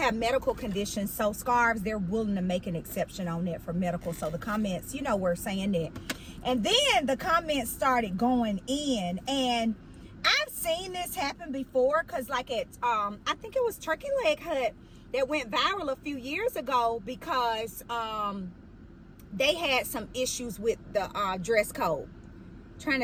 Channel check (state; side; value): identical; both; correlation 1.00